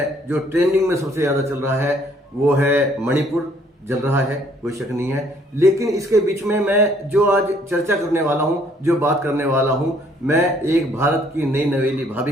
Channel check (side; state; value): both; normal; correlation 0.63